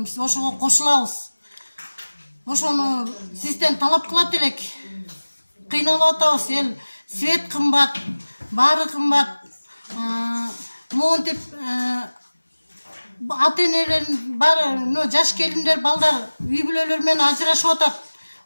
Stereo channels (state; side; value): inverted; both; correlation -1.00